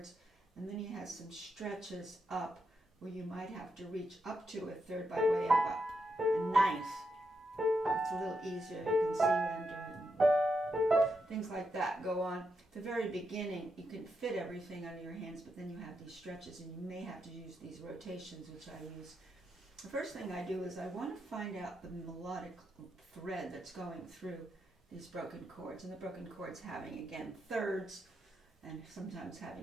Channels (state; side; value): normal; both; correlation 0.83